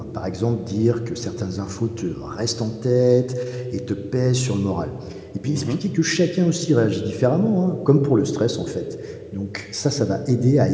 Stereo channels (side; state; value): both; identical; correlation 1.00